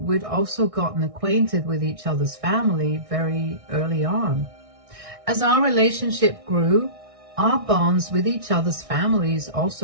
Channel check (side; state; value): left; late; 1.6 ms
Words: we'd also gotten acquainted with each other's family very early on. As our relationship grew, our bonds with each other's families